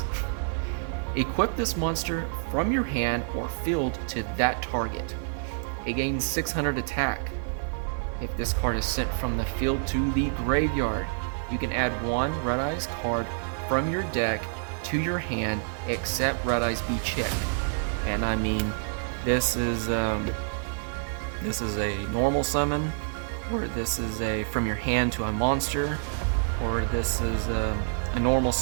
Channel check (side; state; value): left; silent; digital silence